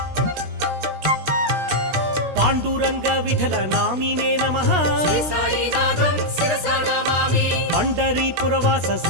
పాండురంగ విఠల నామినే నమః శ్రీ సాయినాథం శిరసా నమామి పండరీపురవాస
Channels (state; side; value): late; left; 16 ms